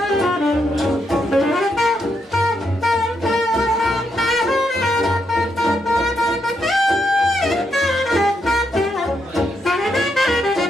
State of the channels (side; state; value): both; normal; correlation 0.80